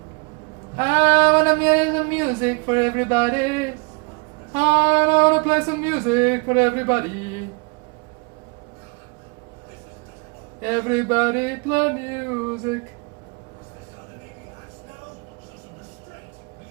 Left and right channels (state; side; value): quieter; left; 30.5 dB